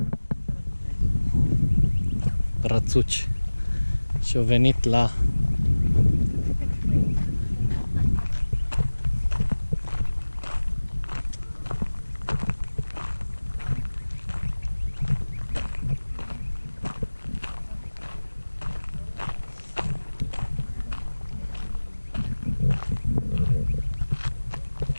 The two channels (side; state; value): both; inverted; correlation -1.00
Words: Rățuci. Și au venit la